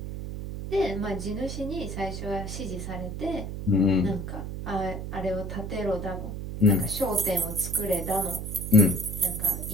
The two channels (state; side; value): noise; right; hum, 6 dB below the sound